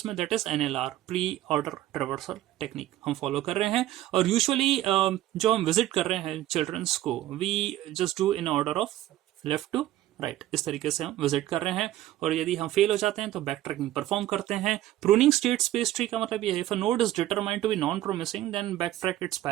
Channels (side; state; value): left; quieter; 14.2 dB